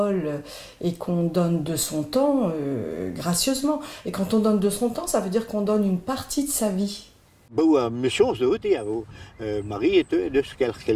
et qu'on donne de son temps, gracieusement, et quand on donne de son temps, ça veut dire qu'on donne une partie de sa vie. Mission zo te avo Marie et de ce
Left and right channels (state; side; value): identical; both; correlation 1.00